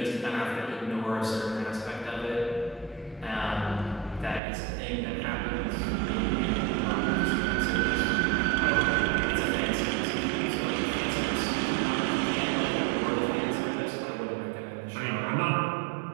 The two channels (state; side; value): drops out; left; at 4.4 s